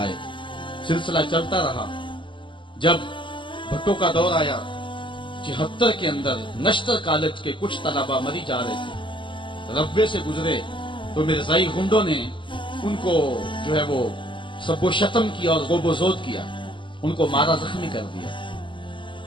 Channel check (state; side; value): late; right; 0.24 ms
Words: سلسلہ چلتا رہا۔ جب بھٹو کا دور آیا 76 کے اندر نشتر کالج کے کچھ طلبہ مری جا رہے تھے، ربے سے گزرے تو مرزائی گنڈوں نے ان کو جو ہے وہ سب و شتم کیا اور غوب و زود کیا، ان کو مارا زخمی کر دیا۔